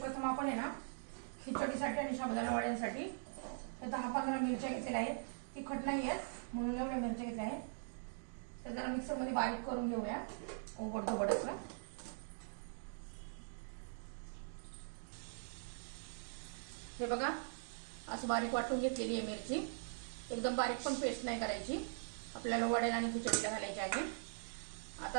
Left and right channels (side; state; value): left; silent; digital silence